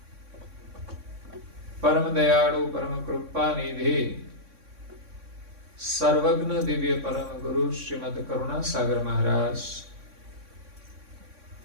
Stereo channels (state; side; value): late; left; 3.6 ms